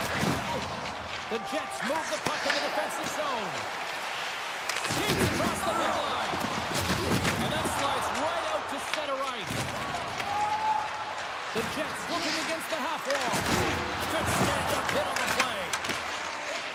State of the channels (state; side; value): identical; both; correlation 1.00